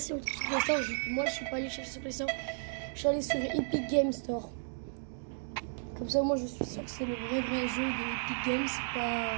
on le trouve sur Play Store. Moi je suis pas allé chercher sur Play Store. Je suis allé sur Epic Game Store. Comme ça moi je suis sûr que c'est le vrai jeu de Epic Games. C'est pas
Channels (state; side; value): silent; left; digital silence